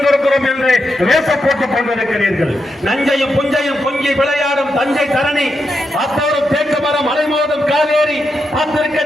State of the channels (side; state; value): both; normal; correlation 0.85